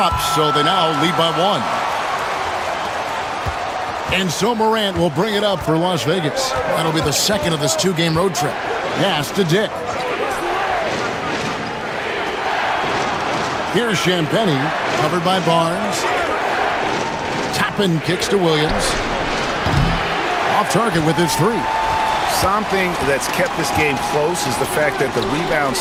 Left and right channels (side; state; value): both; identical; correlation 1.00